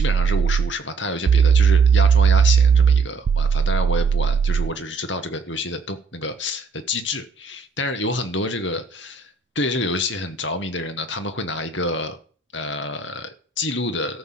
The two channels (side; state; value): left; quieter; 4.4 dB